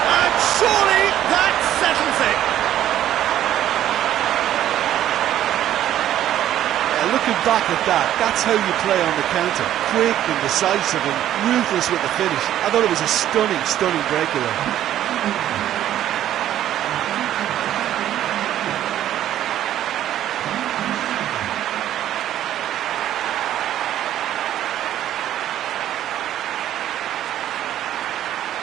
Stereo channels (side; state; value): left; quieter; 12.0 dB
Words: And surely that settles it. Looking back at that, that's how you play on the counter. Quick and decisive and ruthless with the finish. I thought it was a stunning, stunning breakaway.